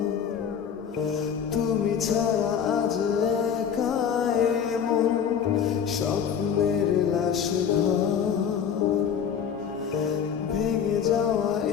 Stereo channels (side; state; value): right; quieter; 7.7 dB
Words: তুমি ছাড়া আজ একা এমন স্বপ্নের লাশ ঘর, ভেঙে যাওয়া